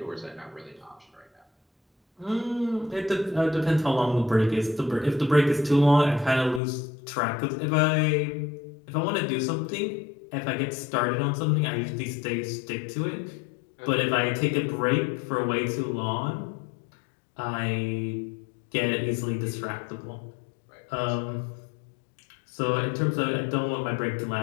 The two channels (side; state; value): right; drops out; at 6.6 s